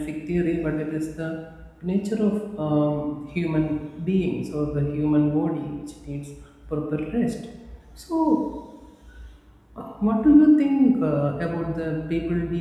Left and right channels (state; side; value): identical; both; correlation 1.00